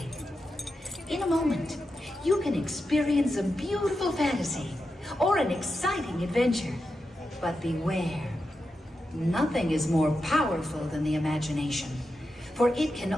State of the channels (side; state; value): both; normal; correlation 0.88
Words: In a moment, you can experience a beautiful fantasy or an exciting adventure. But beware, nothing is more powerful than the imagination, for it